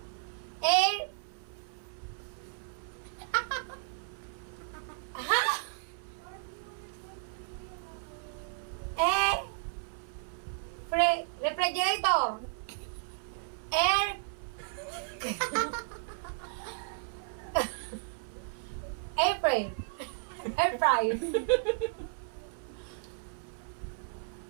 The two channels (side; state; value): left; silent; 55 dB below the other